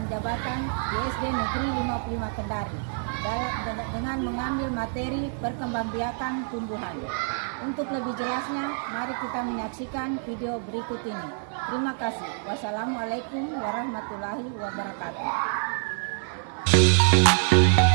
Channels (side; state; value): left; silent; 60 dB below the other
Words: jabatan di SD Negeri 55 Kendari dengan mengambil materi perkembangbiakan tumbuhan. Untuk lebih jelasnya, mari kita menyaksikan video berikut ini. Terima kasih. Wassalamualaikum warahmatullahi wabarakatuh.